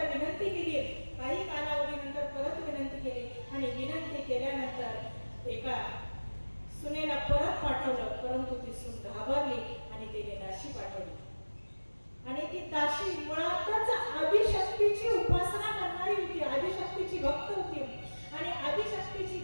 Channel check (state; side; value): inverted; both; correlation -1.00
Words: विनंती केली. काही कालावधीनंतर परत विनंती केली आणि विनंती केल्यानंतर एका सुनेला परत पाठवलं, परंतु ती सून घाबरली आणि तिने दाशी पाठवली. आणि ती दाशी मुळातच आदिशक्तीची उपासना करणारी होती, आदिशक्तीची भक्त होती. आणि आदिशक्तीची